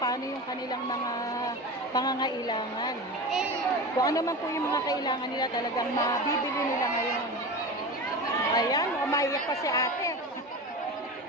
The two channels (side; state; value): both; normal; correlation 0.28